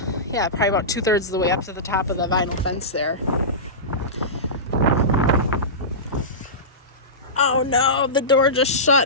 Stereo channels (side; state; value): both; normal; correlation -0.19